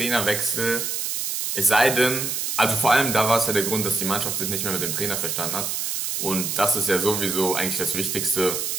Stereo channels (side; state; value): right; noise; hiss, 1 dB below the sound